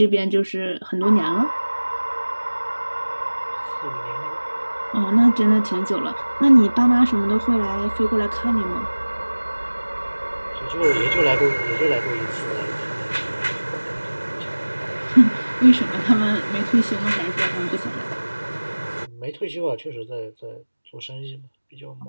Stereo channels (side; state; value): both; inverted; correlation -1.00